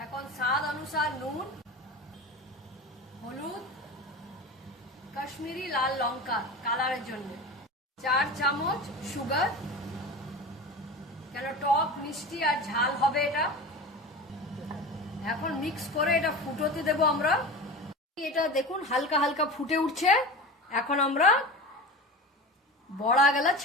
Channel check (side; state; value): both; normal; correlation 0.30